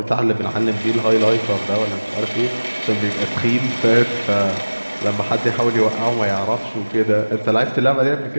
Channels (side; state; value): both; inverted; correlation -1.00